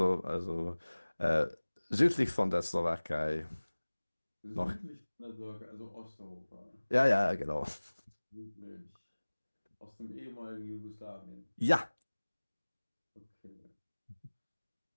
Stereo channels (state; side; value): inverted; both; correlation -1.00